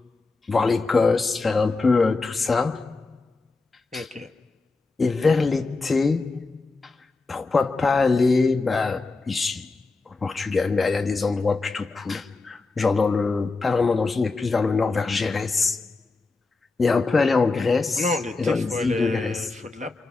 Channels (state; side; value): quieter; right; 3.8 dB